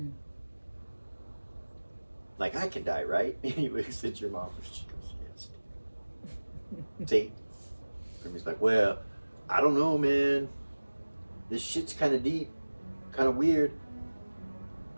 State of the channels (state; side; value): inverted; both; correlation -1.00